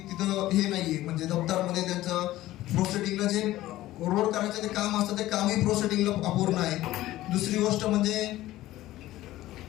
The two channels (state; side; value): quieter; right; 15.7 dB